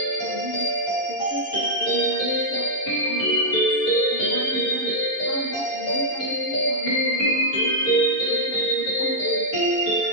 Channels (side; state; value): right; late; 11 ms